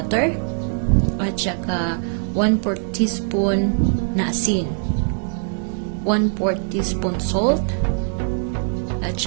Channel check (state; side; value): silent; left; 63 dB below the other